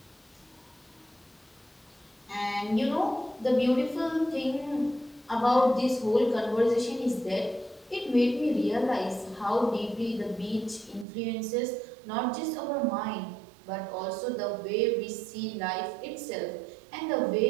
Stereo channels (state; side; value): drops out; left; at 11.1 s